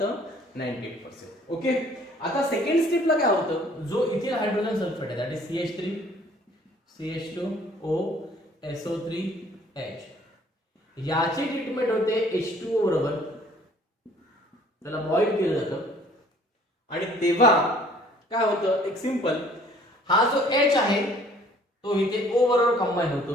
98%. ओके, आता सेकंड स्टेपला काय होतं? जो इथिल हायड्रोजन सल्फेट आहे that is CH3 CH2 OSO3H. याची ट्रीटमेंट होते H2O बरोबर, त्याला बॉईल केलं जातं आणि तेव्हा काय होतं? एक सिंपल, हा जो H आहे तो इथे O बरोबर कंबाईन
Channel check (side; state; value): both; normal; correlation 0.56